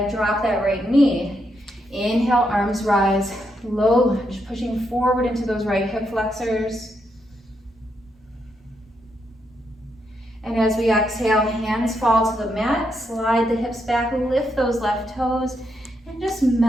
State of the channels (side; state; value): both; normal; correlation 0.80